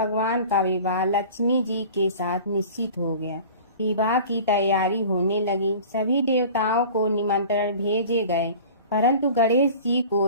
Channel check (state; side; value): inverted; both; correlation -0.42